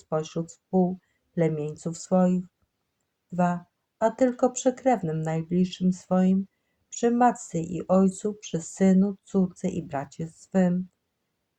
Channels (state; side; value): identical; both; correlation 1.00